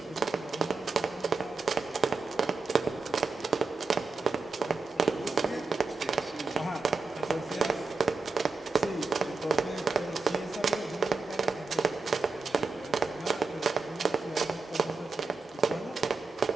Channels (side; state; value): left; quieter; 4.2 dB